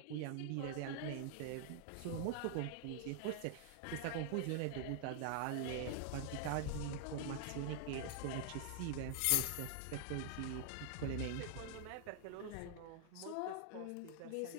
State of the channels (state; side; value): different; both; correlation -0.01